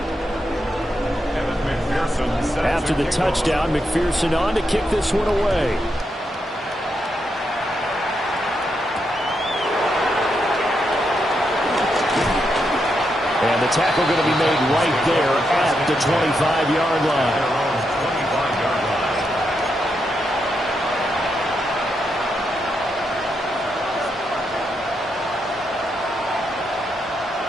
After the touchdown, McPherson on to kick this one away. tackle going to be made right there at the 25-yard line.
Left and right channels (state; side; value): normal; both; correlation 0.82